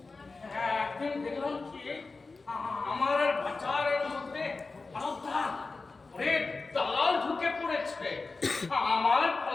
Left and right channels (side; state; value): right; quieter; 3.9 dB